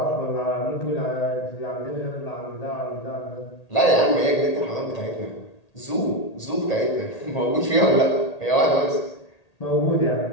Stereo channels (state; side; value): late; right; 1.8 ms